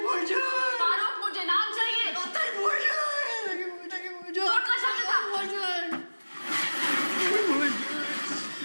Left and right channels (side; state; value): both; inverted; correlation -1.00